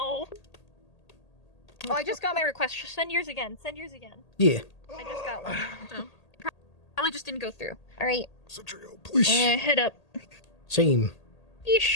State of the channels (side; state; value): right; late; 1.8 ms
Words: Oh, I just got my request. Send yours again. Send yours again. Yeah. I just got one. So, probably just didn't go through. Alright. please. Head up. Same.